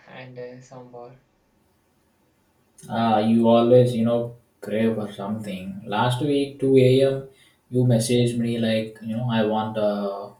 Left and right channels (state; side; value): identical; both; correlation 1.00